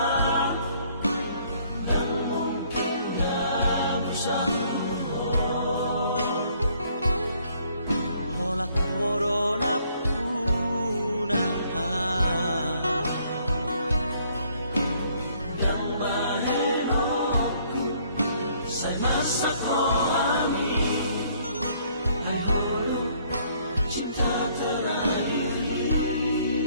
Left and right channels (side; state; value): both; inverted; correlation -0.64